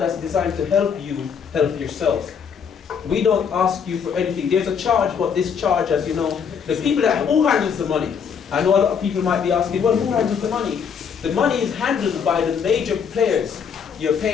designed to help you help yourself. We don't ask you for anything. There's a charge, but this charge, as you know, the people who handles the money? I know a lot of people might be asking, well, who handles the money? The money is handled by the major players, your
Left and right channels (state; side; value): quieter; right; 6.9 dB